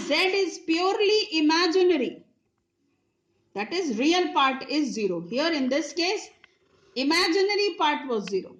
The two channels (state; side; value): identical; both; correlation 1.00